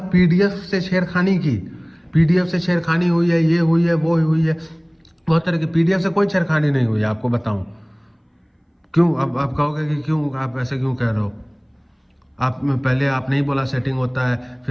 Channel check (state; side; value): identical; both; correlation 1.00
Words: पीडीएफ से छेड़खानी की, पीडीएफ से छेड़खानी हुई है, ये हुई है, वो हुई है, बहुत तरह की। पीडीएफ से कोई छेड़खानी नहीं हुई है, आपको बताऊं क्यों। अब आप कहोगे कि क्यों, आप ऐसे क्यों कह रहे हो? आप पहले आप नहीं बोला सेटिंग होता है,